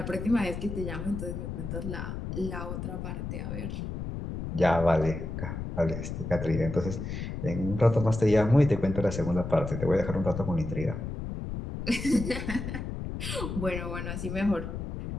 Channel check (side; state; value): left; noise; rumble, 6 dB below the sound